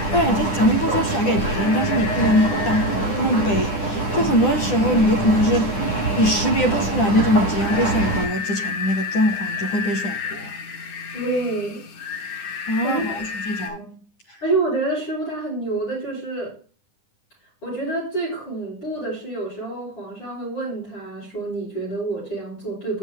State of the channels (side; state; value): right; late; 9.9 ms